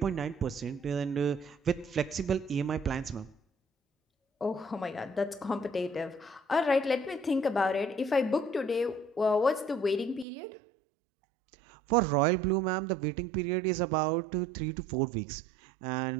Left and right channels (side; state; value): left; drops out; at 10.2 s